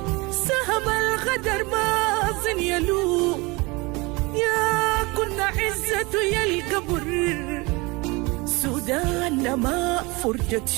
سهم الغدر باطن يلوم، يا كنا عزته يا القبر سودان ما فرجت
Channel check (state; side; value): quieter; left; 25.1 dB